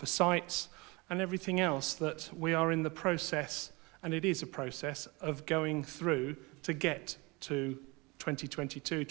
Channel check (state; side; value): quieter; left; 25.8 dB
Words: sites, and everything else that we are in the process, and it is a process, of going through to get to